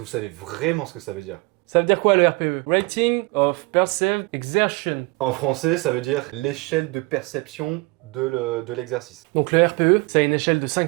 vous savez vraiment ce que ça veut dire? Ça veut dire quoi le RPE? Rating of Perceived Exertion. En français, ça veut dire l'échelle de perception de l'exercice. Donc le RPE, c'est une échelle de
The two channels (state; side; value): quieter; left; 25.2 dB